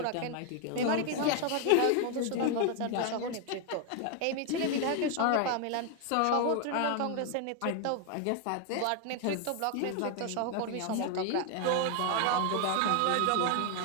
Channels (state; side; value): different; both; correlation 0.00